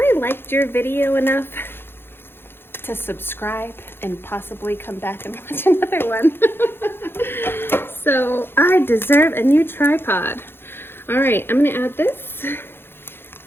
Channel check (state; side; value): late; right; 0.11 ms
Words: liked your video enough to subscribe and possibly come back and watch another one. So I deserve a new tripod. All right, I'm gonna add this.